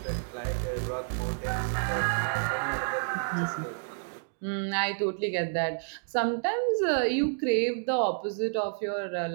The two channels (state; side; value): silent; left; digital silence